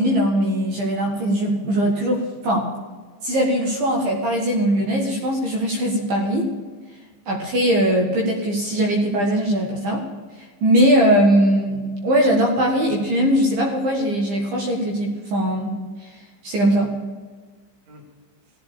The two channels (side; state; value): left; late; 15 ms